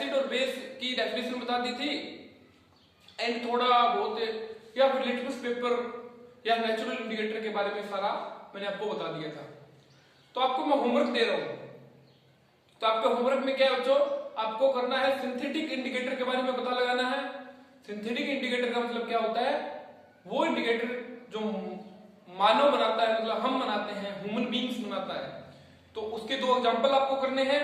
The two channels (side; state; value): both; identical; correlation 1.00